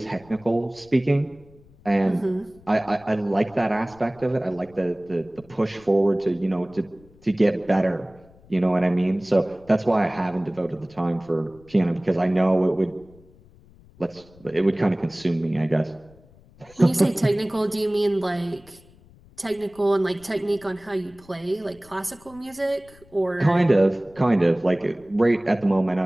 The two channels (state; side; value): noise; left; rumble, 26 dB below the sound